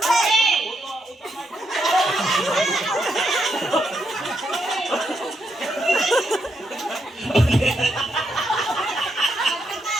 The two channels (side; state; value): both; normal; correlation 0.79